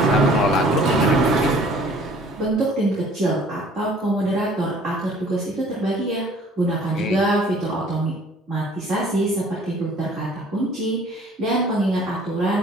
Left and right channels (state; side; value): normal; both; correlation 0.53